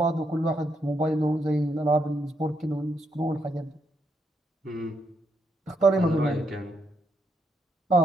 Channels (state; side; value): normal; both; correlation 0.78